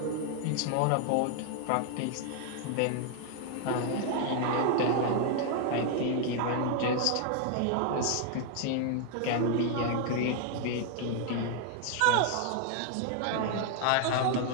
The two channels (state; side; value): different; both; correlation 0.00